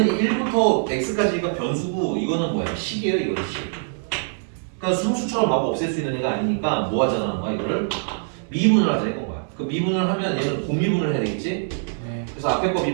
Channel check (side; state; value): left; silent; digital silence